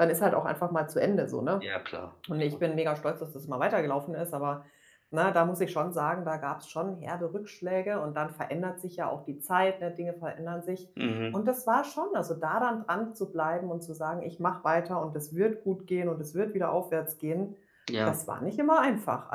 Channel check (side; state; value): both; identical; correlation 1.00